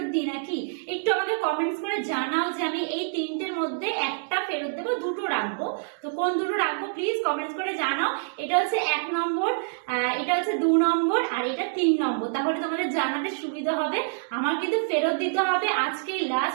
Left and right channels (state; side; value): silent; left; digital silence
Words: দিই নাকি। একটু আমাকে কমেন্টস করে জানাও যে আমি এই তিনটের মধ্যে একটা ফেরত দেবো, দুটো রাখবো। তো কোন দুটো রাখবো প্লিজ কমেন্টস করে জানাও। এটা হচ্ছে 1 নম্বর, এটা হচ্ছে 2 নম্বর, আর এটা 3 নম্বর। তাহলে তোমাদের জানাতে সুবিধা হবে। আমার কিন্তু ফেরত দিতে হবে, আজকেই